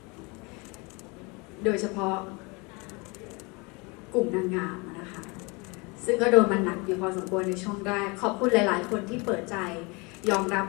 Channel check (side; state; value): right; quieter; 28.2 dB